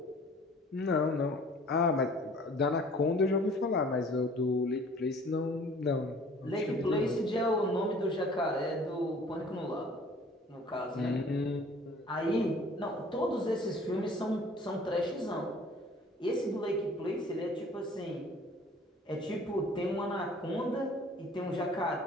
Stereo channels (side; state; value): both; normal; correlation 0.51